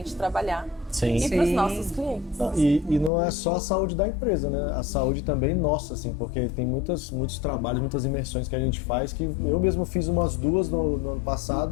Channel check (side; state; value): right; drops out; at 3.1 s